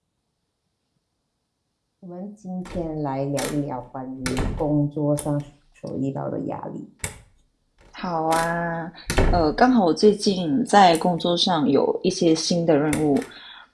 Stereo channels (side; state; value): both; identical; correlation 1.00